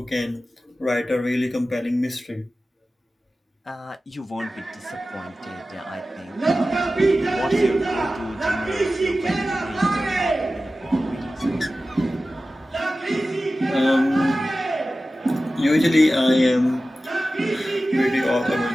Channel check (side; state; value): both; normal; correlation 0.95